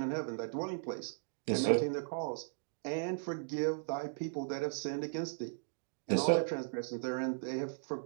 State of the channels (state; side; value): silent; left; digital silence